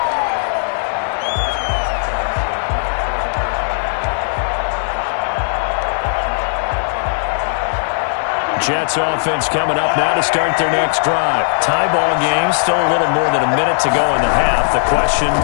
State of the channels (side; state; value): right; silent; digital silence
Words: Jets offense coming up now to start their next drive. Tie ball game, still a little more than a minute to go in the half. The question,